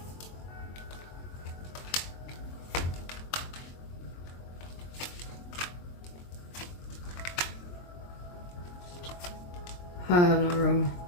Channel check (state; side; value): late; right; 23 ms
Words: I have no room.